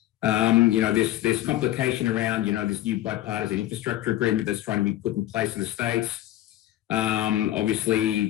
there's complication around, this new bipartisan infrastructure agreement that's trying to be put in place in the States.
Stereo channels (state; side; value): quieter; right; 14.3 dB